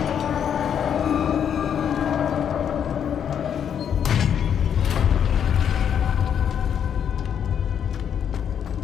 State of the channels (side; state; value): right; quieter; 8.5 dB